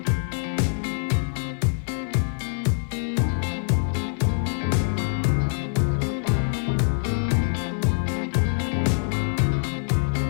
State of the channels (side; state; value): right; silent; 62 dB below the other